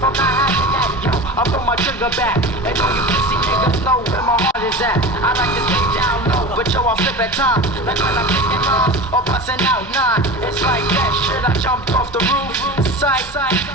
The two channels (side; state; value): both; normal; correlation 0.31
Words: not having that, yo. I pull my trigger back. And all you pussy niggas know where my heart is at. I like to stay down low, but yo, I flip at times. Like when I'm picking lines or busting out nine. It's like that shit, I jumped off the roof. Sight,